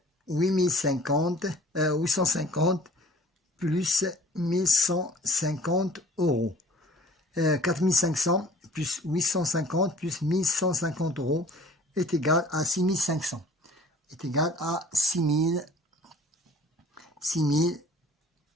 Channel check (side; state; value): both; normal; correlation 0.49